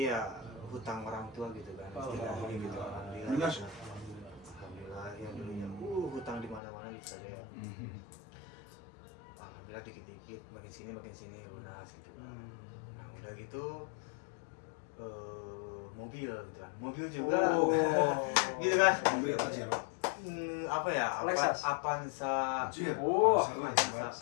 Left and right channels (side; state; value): right; drops out; at 6.6 s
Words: ya hutang orang tua gitu kan istilahnya gitu. Alhamdulillah alhamdulillah ya dulunya hutang di mana-mana bisa deh ya. Alhamdulillah dikit-dikit makin sini lunas gitu kan. Nah udah gitu mobil gitu kan, mobil juga gitu kan. Mobil apa sih? Apa ya? Lexus. Avanza. Oh,